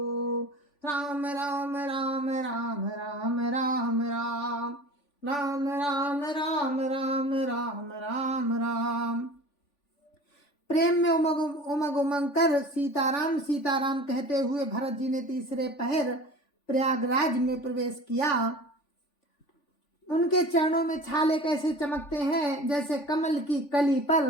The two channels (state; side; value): late; right; 3.5 ms